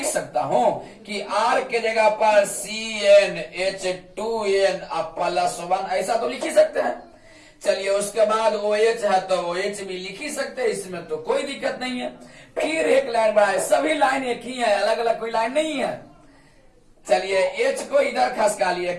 सकता हूं कि R के जगह पर CnH2n +1, ऐसा तो लिख ही सकते हैं। चलिए उसके बाद OH है तो OH भी लिख ही सकते हैं, इसमें तो कोई दिक्कत नहीं है। फिर एक लाइन बढ़ाए, सभी लाइन एक ही है, अलग अलग कोई लाइन नहीं है। चलिए H को इधर खसका लिए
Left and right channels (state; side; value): identical; both; correlation 1.00